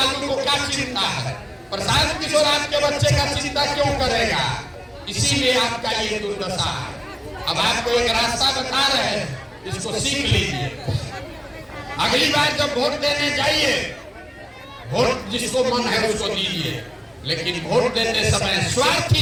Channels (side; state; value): both; identical; correlation 1.00